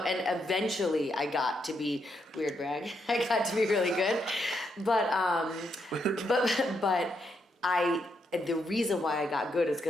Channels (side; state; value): both; normal; correlation 0.79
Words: and eventually I got to be, weird brag, I got to be really good. But the reason why I got good is